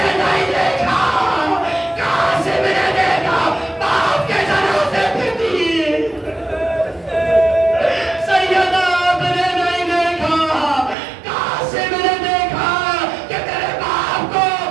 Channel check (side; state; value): left; drops out; at 11.0 s